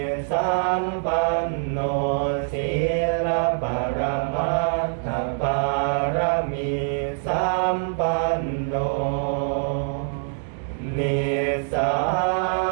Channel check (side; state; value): left; silent; digital silence